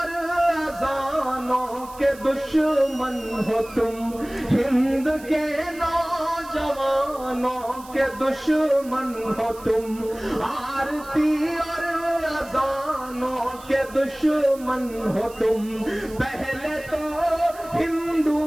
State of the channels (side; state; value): right; noise; hiss, 20 dB below the sound